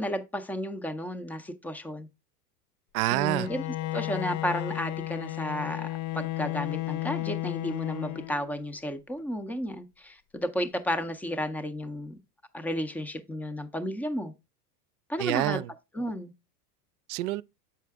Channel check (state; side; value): normal; both; correlation 0.49